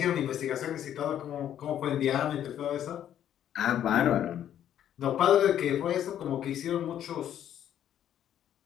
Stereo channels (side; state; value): right; quieter; 10.6 dB